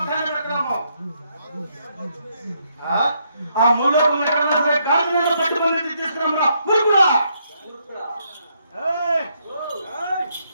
పెట్టడము ఆ మూలోకం ఎక్కడన్నా సరే కాళ్ళు పట్టుకుని తీసుకున్నామురా ఊరుకురా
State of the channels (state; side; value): inverted; both; correlation -0.75